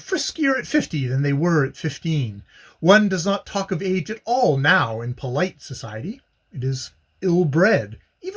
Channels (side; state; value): both; identical; correlation 1.00